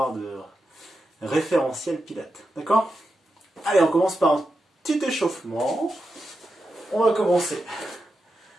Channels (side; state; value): both; normal; correlation 0.88